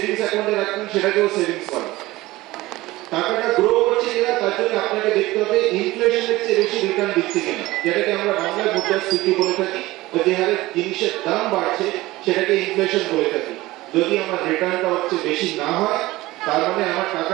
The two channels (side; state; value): left; quieter; 18.7 dB